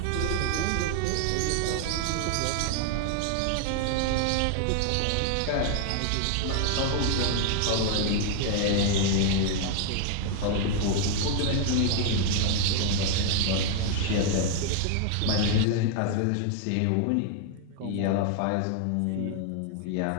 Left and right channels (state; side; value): different; both; correlation 0.00